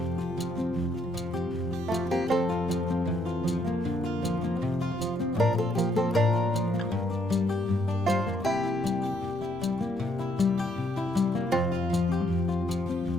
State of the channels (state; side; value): normal; both; correlation 0.72